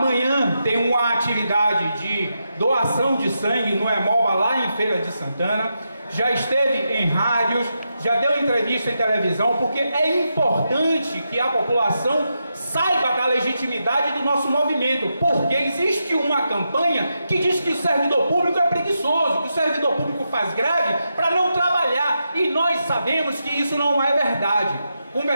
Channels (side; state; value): both; inverted; correlation -0.86